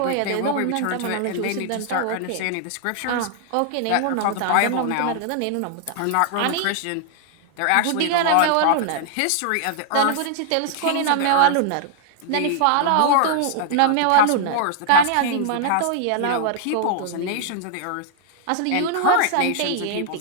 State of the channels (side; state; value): both; different; correlation -0.01